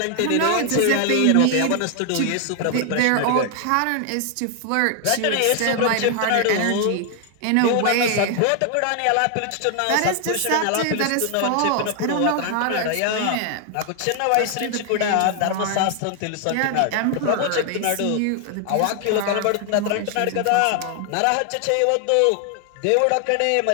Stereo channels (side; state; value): both; different; correlation 0.00